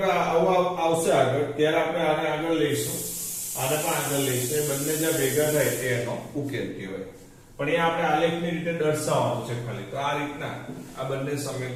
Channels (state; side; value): identical; both; correlation 1.00